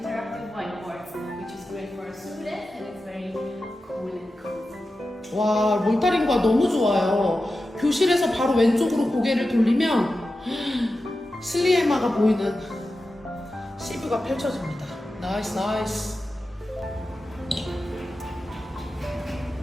whiteboards, which is great for our students, and it's very cool and cozy. 와, 몰타링과 너무 좋아요. 교실에서 바로 왼쪽으로 고개를 돌리면 슬리에마가 보이는 시뷰가 펼쳐집니다. 나이스, 나이스.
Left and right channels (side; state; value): both; normal; correlation 0.92